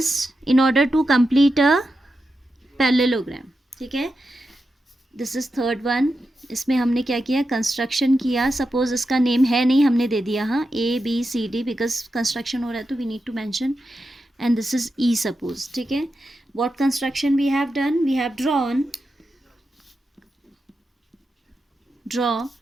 in order to complete a parallelogram. ठीक है, this is third one. इसमें हमने क्या किया, construction किया. Suppose इसका name है नहीं, हमने दे दिया हाँ ABCD, बिकॉज कंस्ट्रक्शन हो रहा है तो we need to mention. And this is E suppose. ठीक है, what construction we have done? We have draw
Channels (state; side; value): normal; both; correlation 0.89